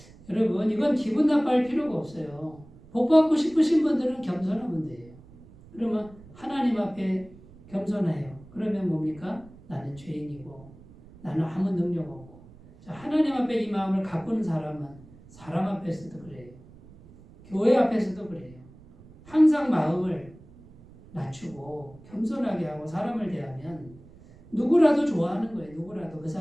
여러분 이건 기분 나빠할 필요가 없어요. 복 받고 싶으신 분들은 겸손하면 돼요. 그러면 하나님 앞에 겸손해요. 그러면 뭡니까? 나는 죄인이고 나는 아무 능력 없고. 자, 하나님 앞에 이 마음을 가꾸는 사람은 사람 앞에서도 그래요. 교회 앞에서도 그래요. 항상 마음을 낮추고 겸손하게 하고 사람을 대하면 누구라도 좋아하는 거예요. 누구라도 그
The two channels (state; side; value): noise; right; rumble, 22 dB below the sound